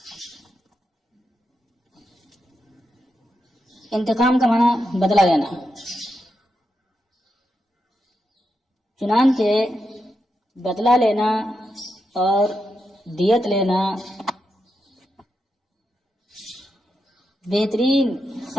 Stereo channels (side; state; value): both; normal; correlation 0.85